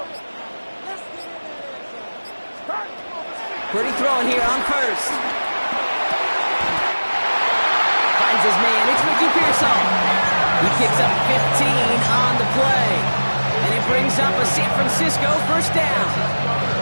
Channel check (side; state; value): both; inverted; correlation -1.00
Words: Purdy throwing here on first. Finds his man. It's Ricky Pearsall. He picks up 15 on the play. And it brings up a San Francisco first down.